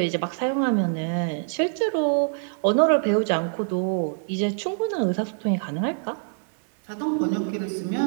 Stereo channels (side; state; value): left; silent; digital silence